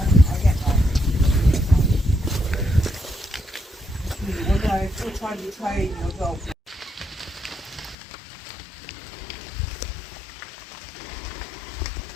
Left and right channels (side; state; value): right; drops out; at 8.0 s